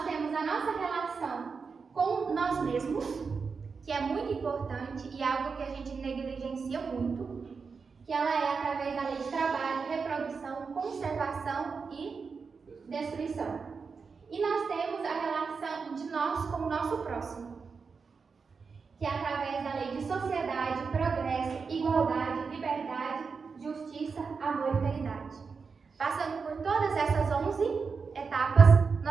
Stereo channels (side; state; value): left; quieter; 5.2 dB